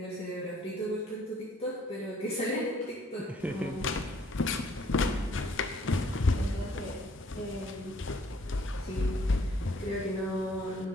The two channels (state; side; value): normal; both; correlation 0.62